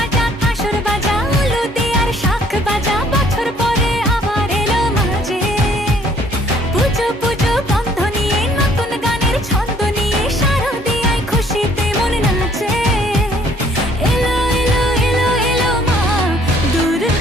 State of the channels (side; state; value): both; normal; correlation 0.61